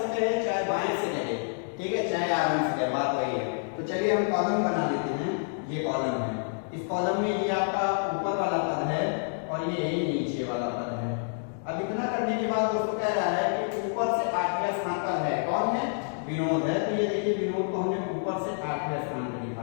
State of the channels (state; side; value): silent; right; digital silence